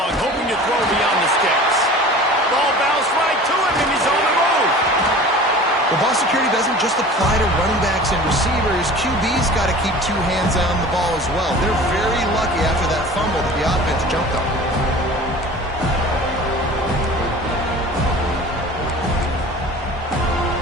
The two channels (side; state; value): both; normal; correlation 0.41